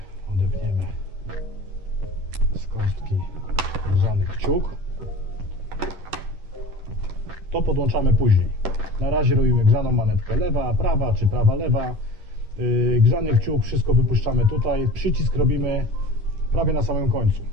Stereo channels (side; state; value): left; late; 11 ms